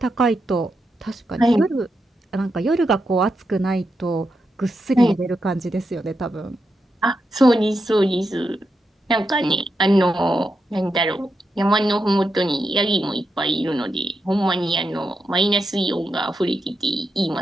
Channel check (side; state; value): both; normal; correlation 0.86